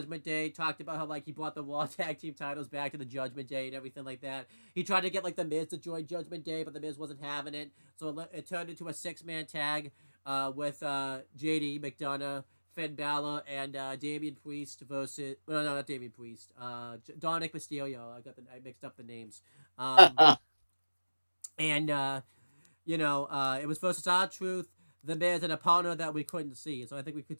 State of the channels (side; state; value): both; inverted; correlation -1.00